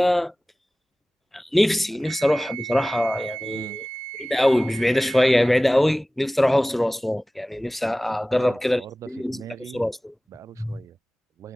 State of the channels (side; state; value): both; normal; correlation 0.98